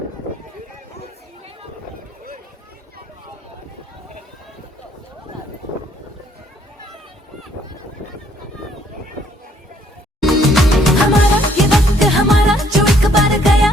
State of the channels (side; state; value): both; normal; correlation 0.65